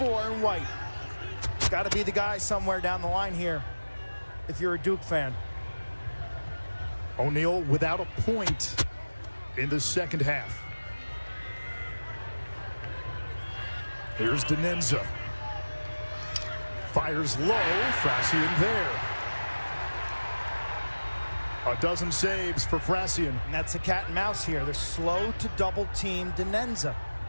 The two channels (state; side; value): inverted; both; correlation -1.00